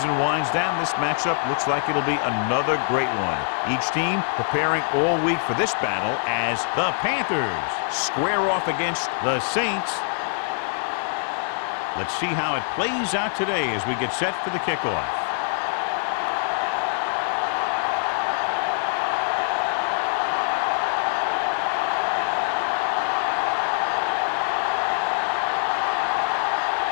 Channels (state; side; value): silent; right; 61 dB below the other